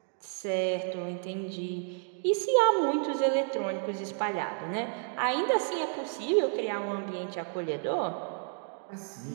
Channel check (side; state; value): left; silent; 57 dB below the other